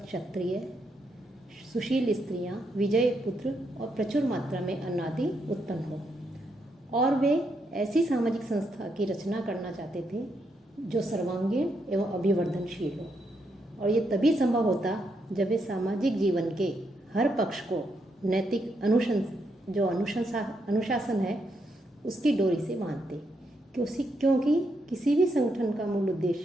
क्षत्रिय, सुशील स्त्रियां, विजयी पुत्र और प्रचुर मात्रा में अन्न आदि उत्पन्न हो। और वे ऐसी सामाजिक संस्था की रचना करना चाहते थे जो सर्वांगीण एवं अभिवर्धनशील हो। और ये तभी संभव होता जब वे सामाजिक जीवन के हर पक्ष को नैतिक अनुशासन है उसकी डोरी से बांधते। क्योंकि किसी भी संगठन का मूल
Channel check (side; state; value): both; normal; correlation 0.79